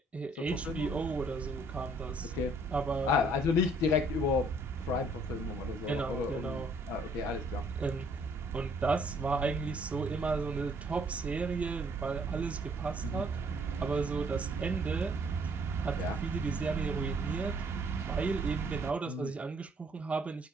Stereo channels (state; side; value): normal; both; correlation 0.62